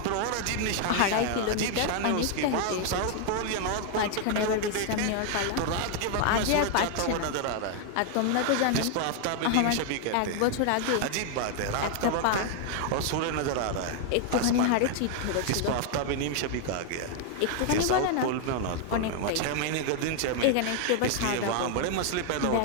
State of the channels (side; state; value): both; different; correlation 0.00